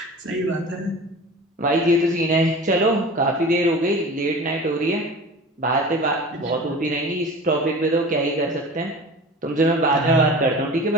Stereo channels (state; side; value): normal; both; correlation 0.37